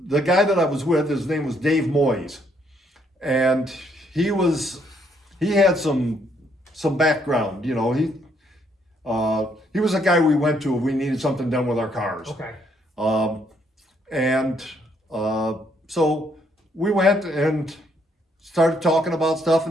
guy that I was with, his name was Dave Moyes, and he had some background. He was a guy we went to if we needed something done with our cars. Okay. So we went and started talking about stuff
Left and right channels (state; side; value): normal; both; correlation 0.70